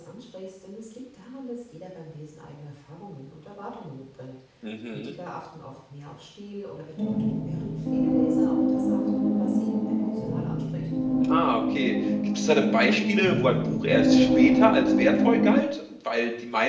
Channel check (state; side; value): identical; both; correlation 1.00